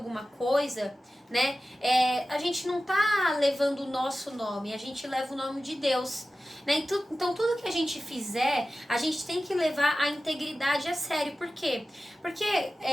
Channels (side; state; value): both; normal; correlation 0.95